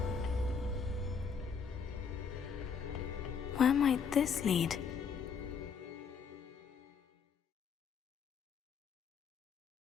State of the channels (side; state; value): right; quieter; 6.2 dB